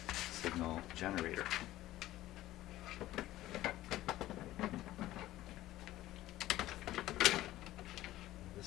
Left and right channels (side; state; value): right; quieter; 15.3 dB